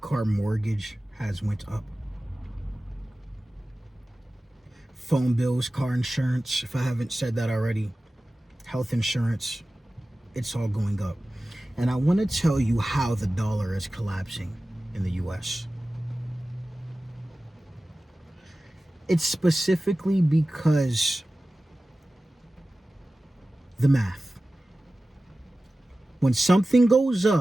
mortgage has went up, phone bills, car insurance, if I haven't said that already, health insurance, it's all going up. And I want to tell you how the dollar is collapsing in the U.S. It's specifically because the math. When something goes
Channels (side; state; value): both; normal; correlation 0.96